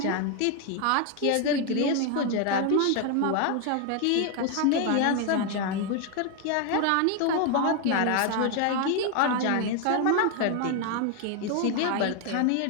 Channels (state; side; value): different; both; correlation 0.01